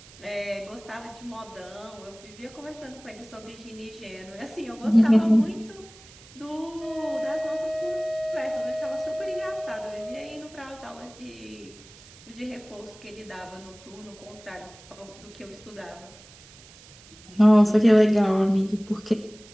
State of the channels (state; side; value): noise; right; hiss, 22 dB below the sound